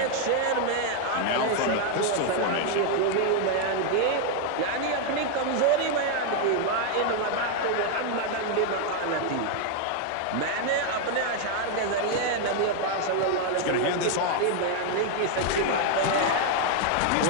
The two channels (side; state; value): both; different; correlation 0.00